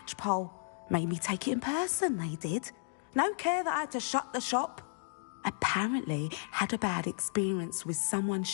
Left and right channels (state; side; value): silent; right; digital silence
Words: Made me take it in person, they did. No care that I had to shut the shop. Apparently had a bad experience with someone